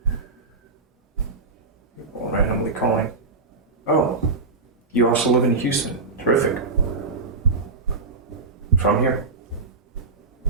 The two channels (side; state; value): left; quieter; 3.9 dB